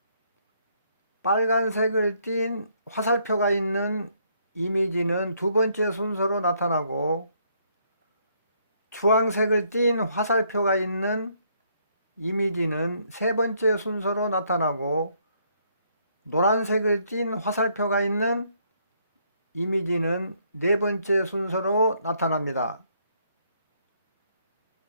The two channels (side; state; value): both; inverted; correlation -0.70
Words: 빨간색을 띤 화살표가 있는 이미지는 두 번째 순서로 나타나고, 주황색을 띤 화살표가 있는 이미지는 세 번째 순서로 나타나고, 노란색을 띤 화살표가 있는 이미지는 네 번째 순서로 나타납니다.